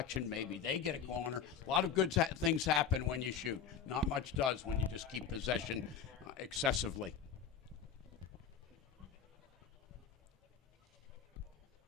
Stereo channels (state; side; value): quieter; right; 7.3 dB